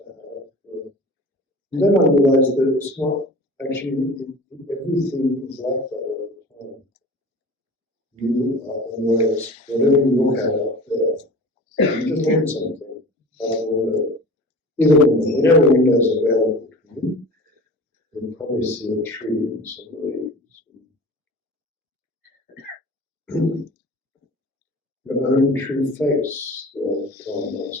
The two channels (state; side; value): normal; both; correlation 0.39